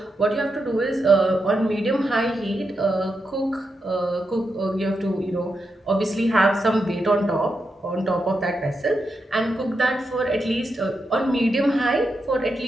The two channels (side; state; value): both; normal; correlation 0.86